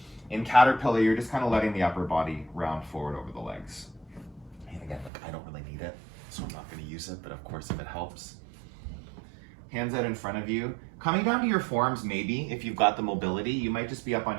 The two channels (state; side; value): drops out; left; at 5.1 s